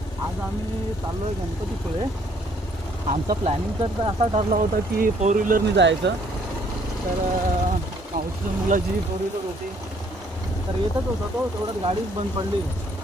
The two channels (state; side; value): normal; both; correlation 0.64